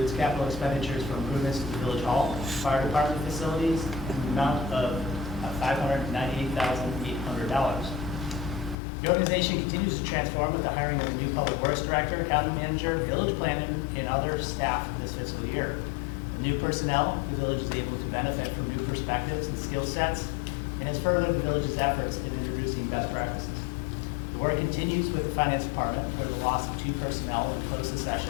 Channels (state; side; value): drops out; right; at 8.8 s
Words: capital expenditures for improvements to the village hall, fire department facilities, in the amount of $598,800. The organization continues to transform with the hiring of a new public works director, accounting manager, village planner, and other staff this fiscal year. With new personnel, the village is able to benefit from new perspectives and skill sets, and has furthered the village's efforts in introducing best practices. The work continues with the finance department, where the loss of 2 personnel in close